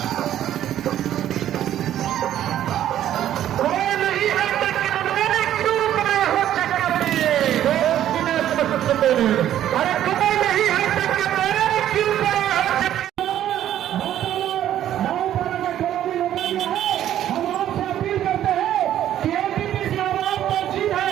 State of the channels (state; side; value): quieter; left; 11.6 dB